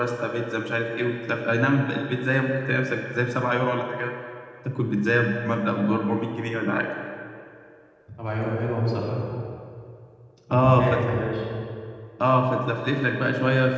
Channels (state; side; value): identical; both; correlation 1.00